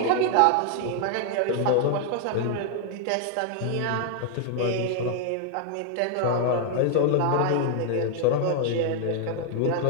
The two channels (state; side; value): different; both; correlation 0.00